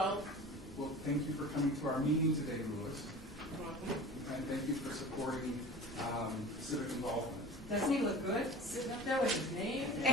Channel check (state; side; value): noise; left; hum, 22 dB below the sound